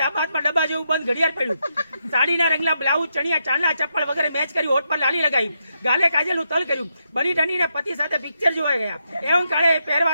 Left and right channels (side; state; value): both; inverted; correlation -0.82